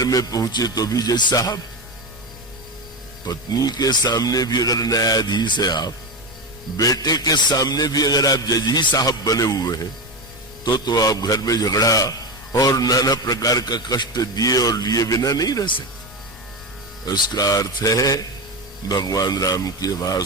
में पहुंचे तो भी जज साहब, पत्नी के सामने भी अगर न्यायाधीश है आप, बेटे के सामने भी अगर आप जज ही साहब बने हुए हैं तो आप घर में झगड़ा और नाना प्रकार का कष्ट दिए और लिए बिना नहीं रह सकते। उसका अर्थ है भगवान राम की आवाज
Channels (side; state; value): both; normal; correlation 0.17